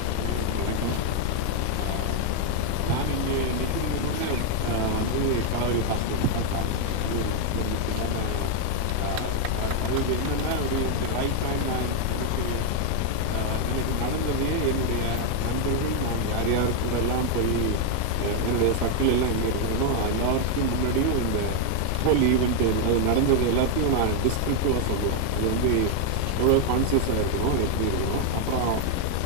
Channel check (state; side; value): different; both; correlation 0.00